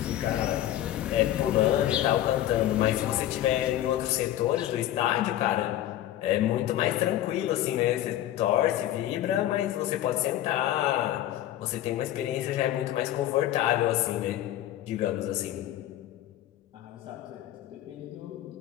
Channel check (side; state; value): right; quieter; 13.0 dB